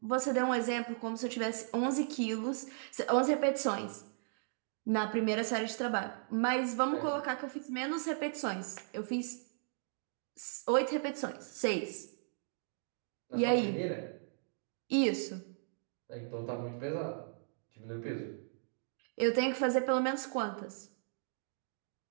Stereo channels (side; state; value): left; silent; digital silence